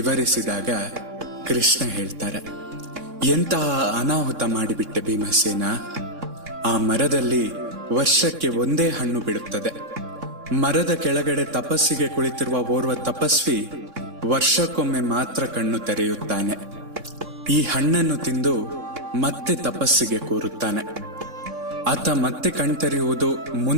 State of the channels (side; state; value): left; late; 3.6 ms